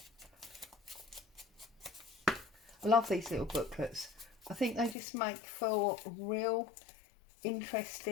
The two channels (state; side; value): drops out; right; at 5.0 s